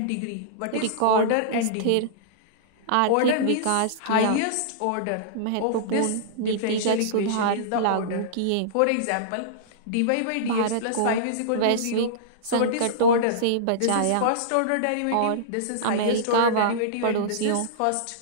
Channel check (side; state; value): both; different; correlation -0.03